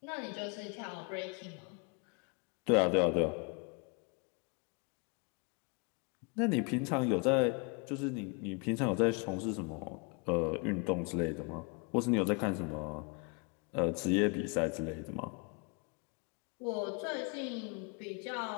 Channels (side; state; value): right; quieter; 33.2 dB